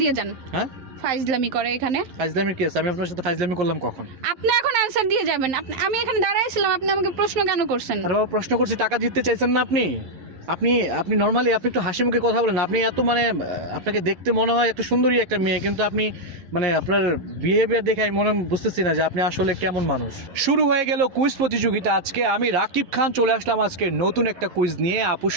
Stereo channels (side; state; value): left; late; 11 ms